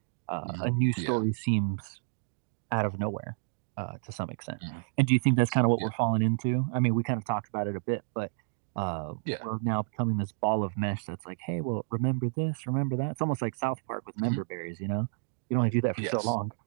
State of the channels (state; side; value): silent; left; digital silence